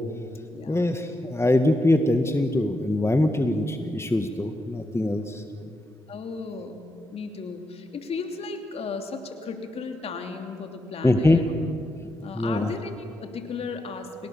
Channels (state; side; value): normal; both; correlation 0.85